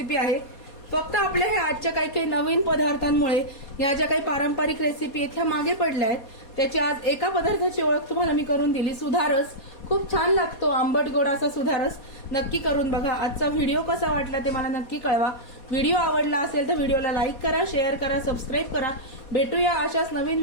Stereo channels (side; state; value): right; late; 4.2 ms